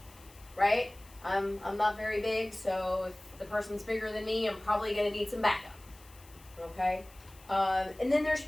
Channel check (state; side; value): noise; left; hiss, 24 dB below the sound